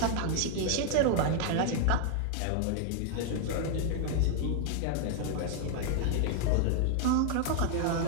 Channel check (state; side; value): different; both; correlation 0.00